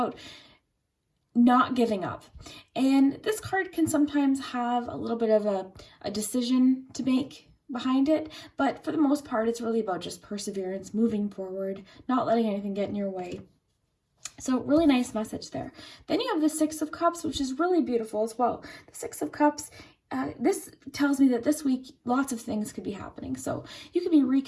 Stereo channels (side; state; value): both; identical; correlation 1.00